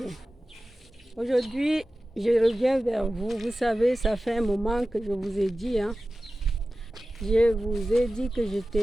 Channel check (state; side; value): normal; both; correlation 0.95